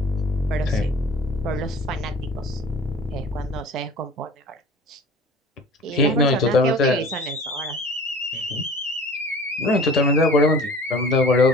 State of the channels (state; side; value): normal; both; correlation 0.43